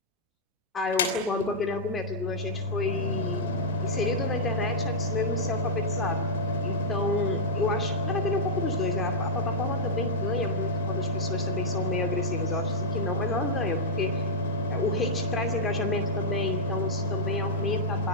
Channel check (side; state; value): both; normal; correlation -0.09